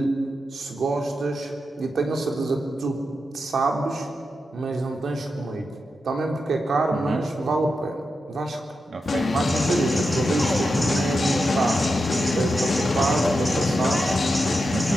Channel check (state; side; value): normal; both; correlation 0.88